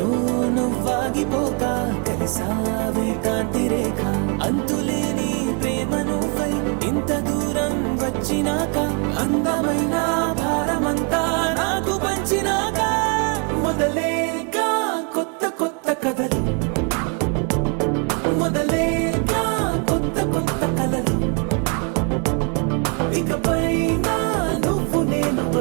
నువ్వాగిపోక కలిసావే కాంతి రేఖ అంతులేని ప్రేమ నువ్వై ఇంత దూరం వచ్చినాక అందమైన భారమంతా నాకు పంచినాక మొదలేక కొత్త కొత్త కథలు మొదలేక కొత్త కొత్త కలలు ఇకపైన నువ్వు నేను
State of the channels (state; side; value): quieter; left; 34.4 dB